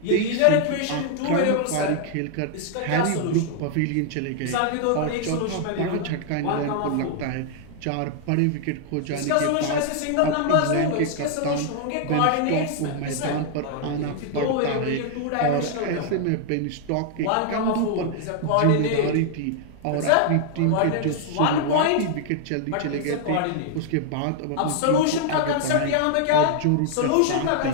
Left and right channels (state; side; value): different; both; correlation 0.00